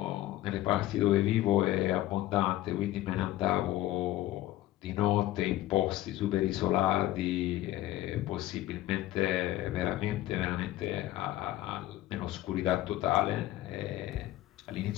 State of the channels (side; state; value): right; quieter; 15.1 dB